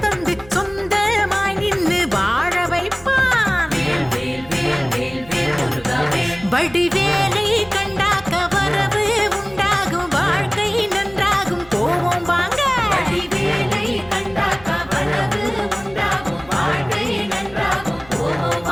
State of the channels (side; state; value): right; noise; hum, 23 dB below the sound